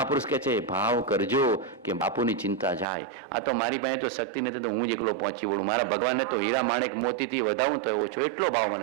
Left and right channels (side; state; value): left; drops out; at 2.9 s